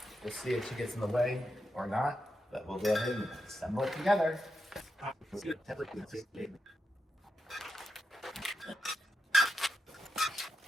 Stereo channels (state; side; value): normal; both; correlation 0.86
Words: We'll see if she gets in the way or not, but we'll go ahead and assemble it together.